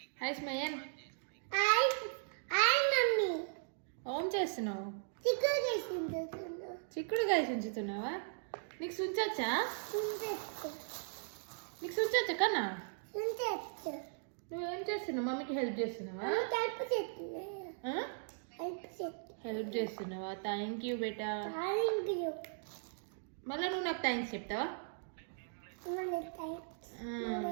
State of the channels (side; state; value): left; silent; digital silence